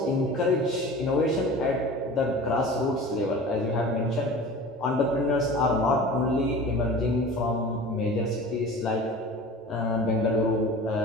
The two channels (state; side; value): normal; both; correlation 0.38